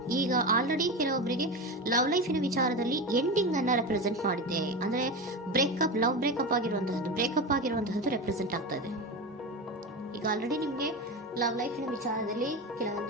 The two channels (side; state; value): both; normal; correlation 0.22